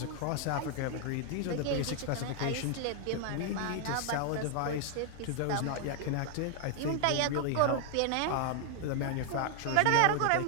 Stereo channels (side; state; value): both; different; correlation 0.00